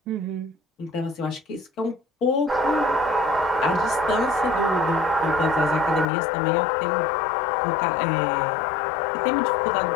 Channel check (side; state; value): right; drops out; at 6.1 s